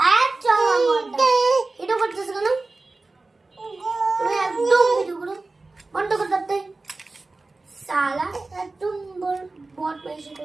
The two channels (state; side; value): quieter; left; 3.4 dB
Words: আচ্ছা ভিডিও করতেছো কেন? তুমি একদম ভিডিও করো বন্ধ করে দাও। সালা একদম বট বেশি